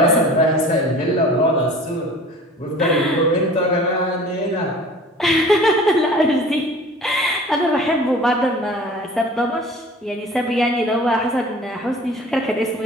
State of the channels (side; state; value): both; normal; correlation 0.44